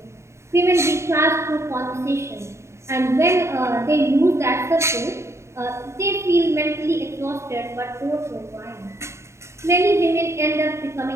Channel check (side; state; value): left; late; 0.13 ms